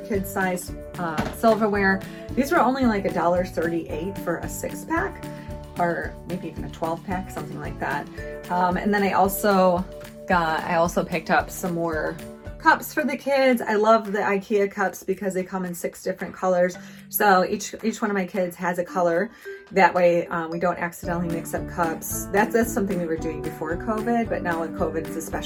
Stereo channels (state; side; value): identical; both; correlation 1.00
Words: silverware. These were only like $1.38 for a 6-pack, or maybe even a 12-pack, something like that. And then I also picked up some more cups for the kids. I love the Ikea cups because they come in 6 different colors. So each one of my kids has a color. That way we don't accidentally mix up cups. That's something we were doing before COVID, but now with COVID it's